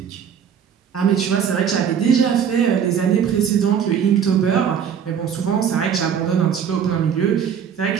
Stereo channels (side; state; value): left; quieter; 7.9 dB